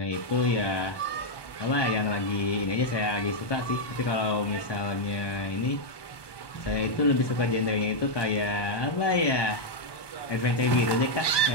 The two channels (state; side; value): late; right; 1.2 ms